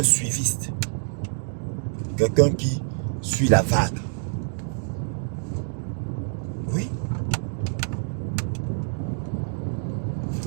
suiviste. Quelqu'un qui suit la vague. Oui.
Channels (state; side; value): silent; left; digital silence